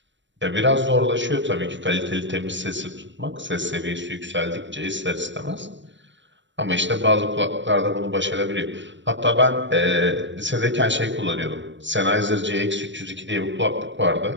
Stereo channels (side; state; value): left; late; 0.54 ms